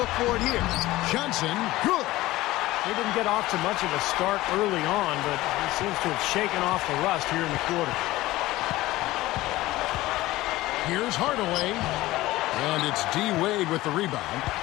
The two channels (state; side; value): quieter; right; 17.6 dB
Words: for it here. Johnson, good. He didn't get off to much of a start early on, but he seems to have shaken off the rust here in the quarter. Here's Hardaway. And it's D. Wade with the rebound.